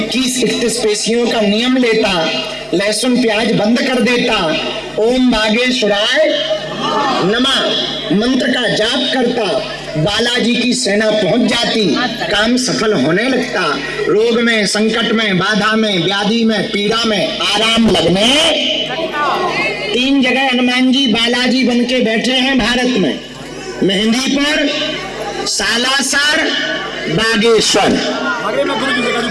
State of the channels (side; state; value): both; identical; correlation 1.00